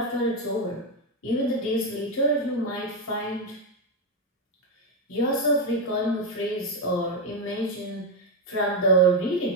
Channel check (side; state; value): both; normal; correlation 0.07